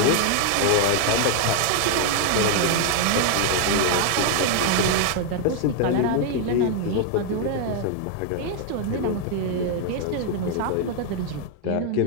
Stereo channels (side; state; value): both; different; correlation 0.00